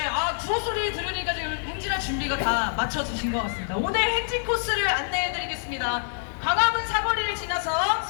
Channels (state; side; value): silent; right; 61 dB below the other